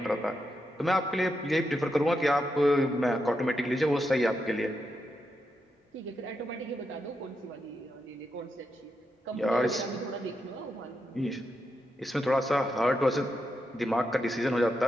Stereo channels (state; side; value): normal; both; correlation 0.84